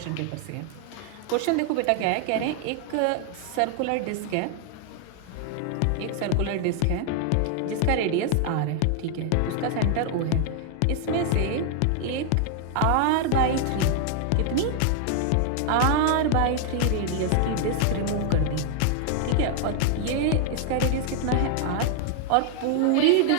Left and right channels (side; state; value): both; different; correlation 0.00